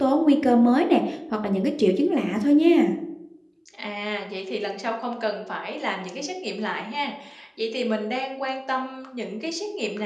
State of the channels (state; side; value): identical; both; correlation 1.00